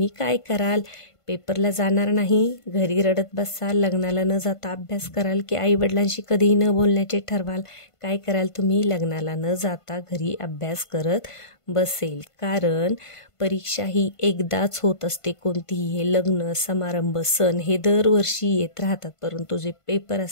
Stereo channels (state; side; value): late; right; 1.5 ms